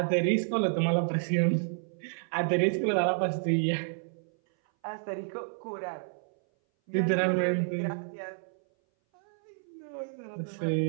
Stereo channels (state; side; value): silent; left; 58 dB below the other